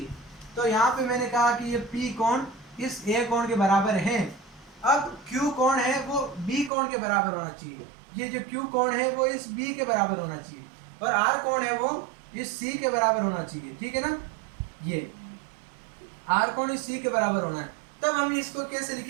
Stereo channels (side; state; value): left; drops out; at 6.7 s